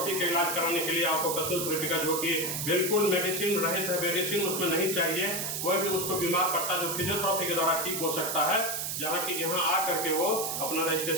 के इलाज कराने के लिए ऑक्यूपेशनल थेरेपी का, जो कि बिल्कुल मेडिसिन रहित है, मेडिसिन उसमें नहीं चाहिए, कोई भी उसको बीमार पड़ता जो फिजियोथेरेपी के द्वारा ठीक हो सकता है, जहाँ की यहाँ आ करके वो अपना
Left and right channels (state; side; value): noise; right; hiss, 2 dB below the sound